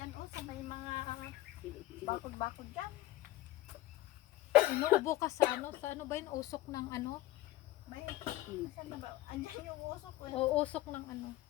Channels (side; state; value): right; quieter; 16.7 dB